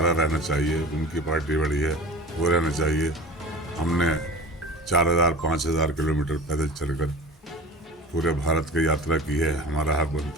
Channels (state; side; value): normal; both; correlation 0.37